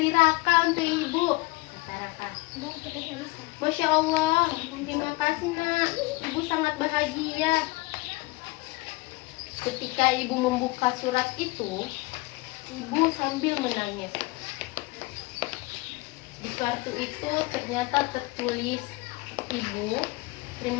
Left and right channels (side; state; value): right; quieter; 22.4 dB